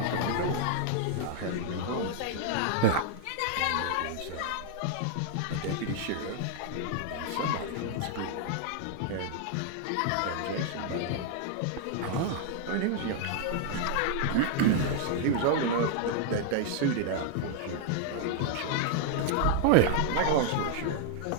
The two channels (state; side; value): different; both; correlation 0.00